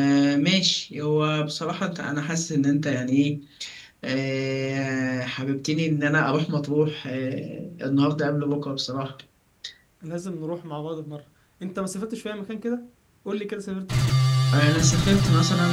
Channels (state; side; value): identical; both; correlation 1.00